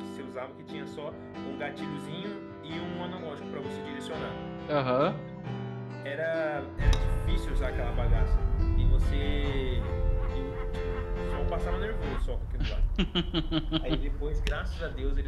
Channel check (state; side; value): identical; both; correlation 1.00